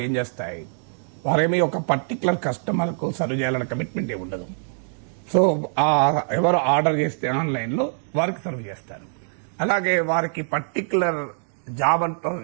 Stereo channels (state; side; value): silent; left; digital silence